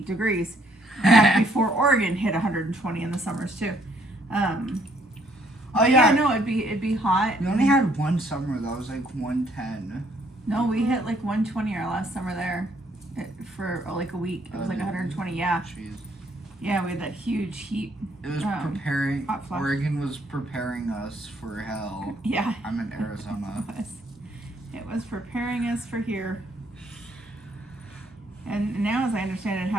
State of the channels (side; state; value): both; normal; correlation 0.67